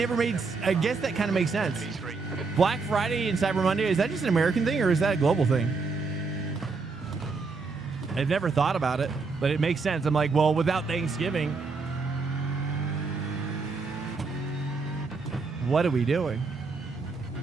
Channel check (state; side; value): quieter; left; 4.4 dB